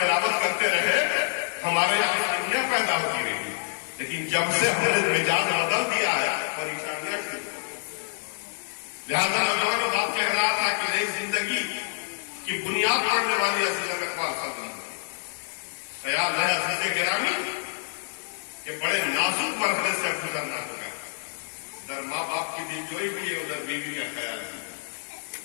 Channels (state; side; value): silent; right; digital silence